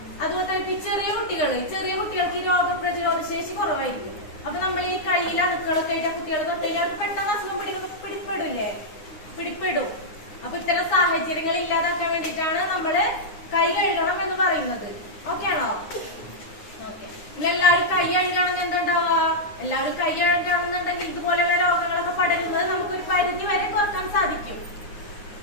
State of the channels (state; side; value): late; right; 9.7 ms